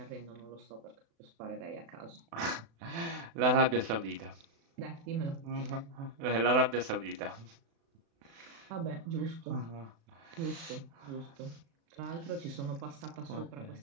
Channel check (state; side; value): late; left; 36 ms